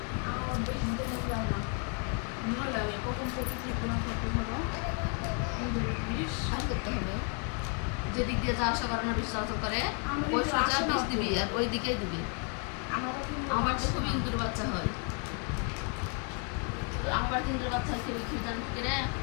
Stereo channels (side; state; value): right; quieter; 37.8 dB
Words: আমার বিষ দিতে মন লাগে না ভয় লাগে কখন প্রচুর লিখতে না থাকতে হলো ইন্দুরের বিষ আর করতে হবে যেদিক দিয়ে যাওয়া আসা করে না বিষ চলাচল করে আমার ওই একটু সোজা আসে না বিষ তো। দিবি আর ওই দিকেই দিবি আমার আমার তো খুব ইন্দুর বাচ্চা হয় আমার ইন্দুর বাচ্চা খেয়ে খেয়ে জান করে